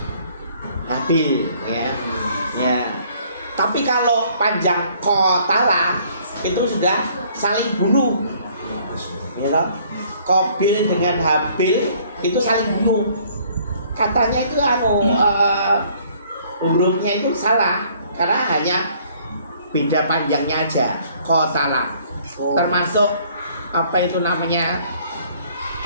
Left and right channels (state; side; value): inverted; both; correlation -0.59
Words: Habil, ya. Ya. Tapi kalau panjang kotala itu sudah saling bunuh, ya toh? Qabil dengan Habil itu saling bunuh. Katanya itu hurufnya itu salah karena hanya beda panjangnya aja. Kotala termasuk apa itu namanya